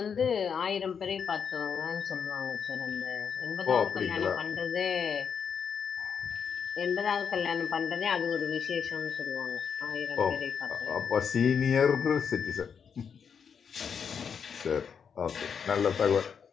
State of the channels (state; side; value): quieter; right; 6.9 dB